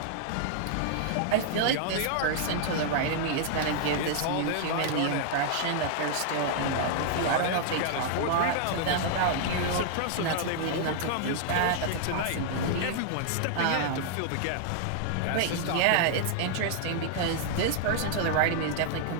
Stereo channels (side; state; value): both; different; correlation -0.01